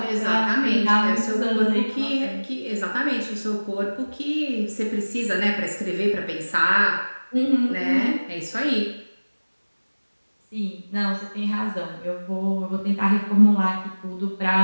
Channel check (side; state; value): both; inverted; correlation -1.00